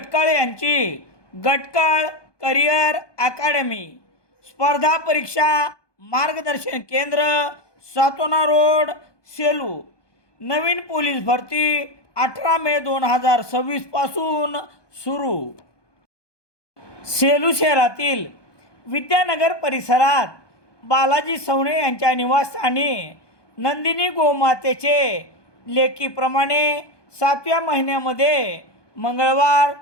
यांची गटकाळ करिअर अकॅडमी, स्पर्धा परीक्षा मार्गदर्शन केंद्र, सातोना रोड, सेलू. नवीन पोलीस भरती 18 मे 2026 पासून सुरू. सेलू शहरातील विद्यानगर परिसरात बालाजी सवणे यांच्या निवासस्थानी नंदिनी गोमातेचे लेकीप्रमाणे 7व्या महिन्यामध्ये मंगळवार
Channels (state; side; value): late; right; 1.2 ms